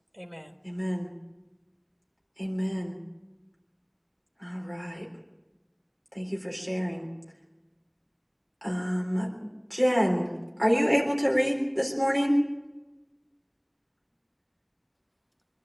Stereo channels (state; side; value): identical; both; correlation 1.00